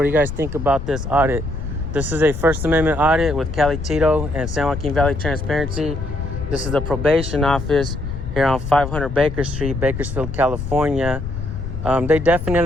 do you guys think about this audit? This is a First Amendment audit with Cali Tito and San Joaquin Valley Transparency. This is the probation office here on 500 Baker Street, Bakersfield, California. They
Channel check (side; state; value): left; noise; rumble, 7 dB below the sound